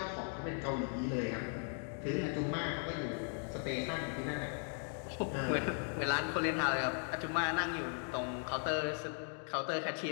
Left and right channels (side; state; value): right; silent; 52 dB below the other